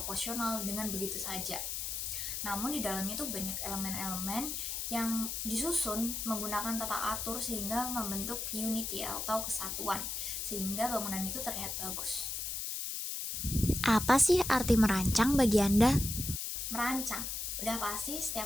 dengan begitu saja. Namun di dalamnya itu banyak elemen-elemen yang disusun menggunakan tata atur sehingga membentuk unity atau kesatuan, sehingga bangunan itu terlihat bagus. Apa sih arti merancang bagi Anda? Merancang, udah pasti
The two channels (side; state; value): left; noise; hiss, 3 dB below the sound